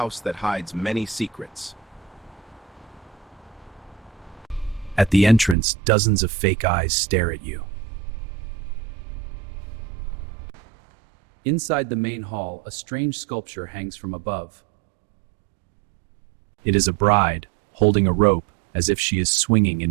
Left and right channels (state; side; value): drops out; left; at 5.6 s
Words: that hides many secrets. At the entrance, dozens of fake eyes stare at you. Inside the main hall, a strange sculpture hangs from above. It is a bride, holding a rope as if she is swinging